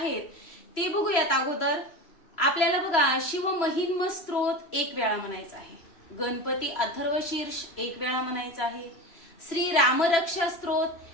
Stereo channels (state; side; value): late; right; 3.0 ms